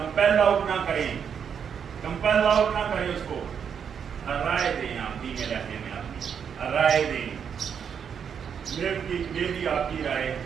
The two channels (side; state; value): left; quieter; 7.4 dB